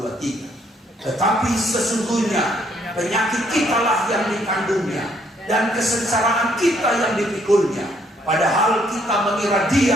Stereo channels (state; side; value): normal; both; correlation 0.68